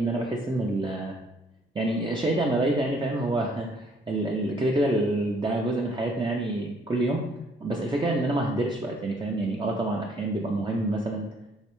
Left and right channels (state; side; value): normal; both; correlation 0.64